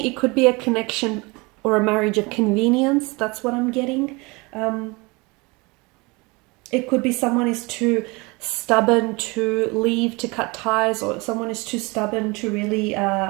it could be a connection or a marriage of convenience. That's what I'm getting. It could be someone is too stubborn to leave, to cut ties, or someone is too stubborn to really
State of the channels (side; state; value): left; quieter; 26.1 dB